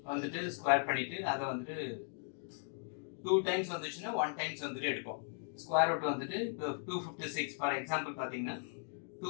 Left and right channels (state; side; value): silent; right; 53 dB below the other